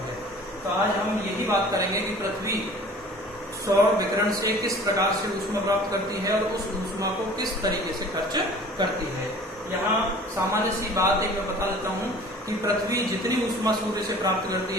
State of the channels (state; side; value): normal; both; correlation 0.46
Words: है। तो आज हम यही बात करेंगे कि पृथ्वी सौर विकिरण से किस प्रकार से ऊष्मा प्राप्त करती है और उस ऊष्मा को किस तरीके से खर्च करती है। यहाँ सामान्य सी बात एक मैं बता देता हूँ कि पृथ्वी जितनी ऊष्मा सूर्य से प्राप्त